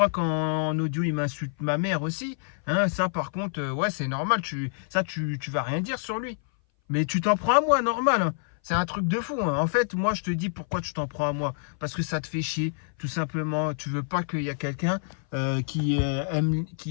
quand en audio, il m'insulte ma mère aussi. Hein, ça, par contre, ouais, c'est normal. Tu vas rien dire sur lui. Mais tu t'en prends à moi, normal, hein. C'est un truc de fou, hein. En fait, moi, je te dis pourquoi tu t'en prends à moi. Parce que ça te fait chier, tout simplement. Tu veux pas qu'il y ait quelqu'un qui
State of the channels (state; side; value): silent; right; 58 dB below the other